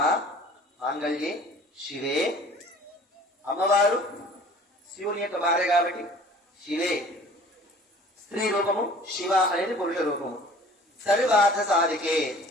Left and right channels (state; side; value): normal; both; correlation 0.48